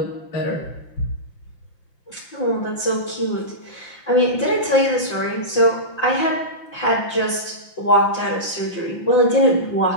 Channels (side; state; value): right; late; 5.8 ms